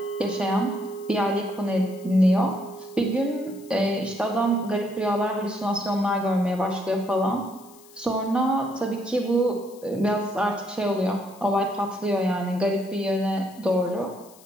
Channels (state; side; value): noise; left; hiss, 24 dB below the sound